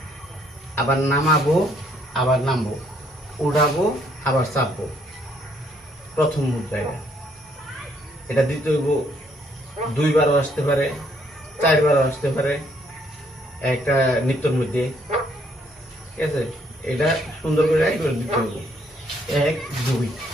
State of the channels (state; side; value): normal; both; correlation 0.68